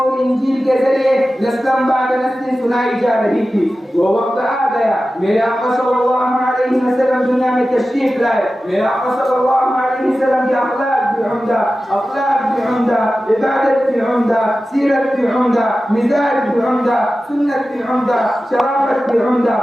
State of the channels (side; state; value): both; normal; correlation 0.94